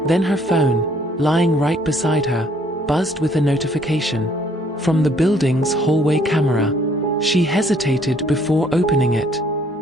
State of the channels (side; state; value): both; normal; correlation 0.63